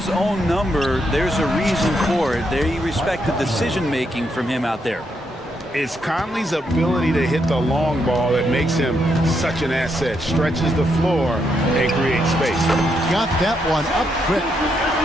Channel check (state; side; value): normal; both; correlation 0.79